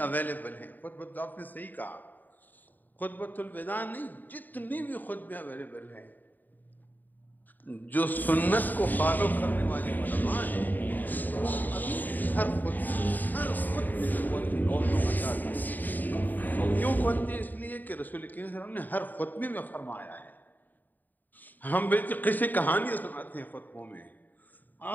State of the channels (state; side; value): late; right; 0.087 ms